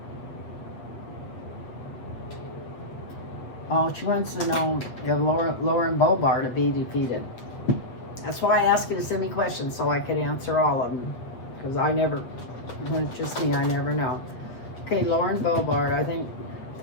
oh, she wants to know if Lauren Boebert to be defeated. That's why I asked you to send me questions so I could answer all of them, because I never, when it's just me, I never know. Okay, Lauren Boebert, I think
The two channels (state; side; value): late; right; 8.3 ms